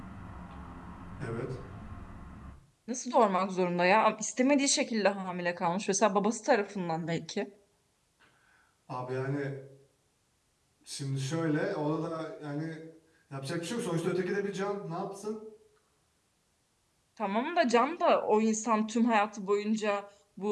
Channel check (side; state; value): both; identical; correlation 1.00